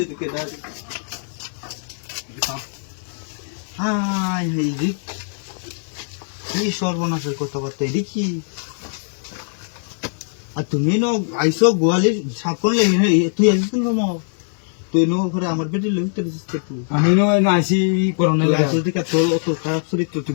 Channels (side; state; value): right; silent; digital silence